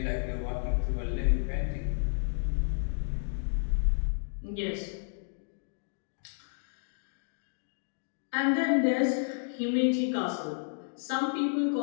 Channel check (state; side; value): silent; right; digital silence